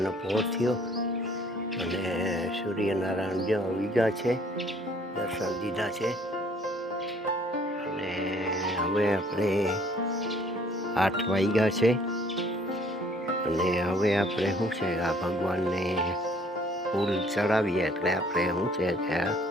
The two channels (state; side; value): normal; both; correlation 0.59